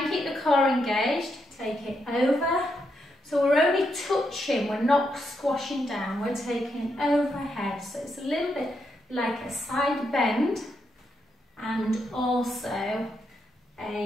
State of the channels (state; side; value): normal; both; correlation 0.81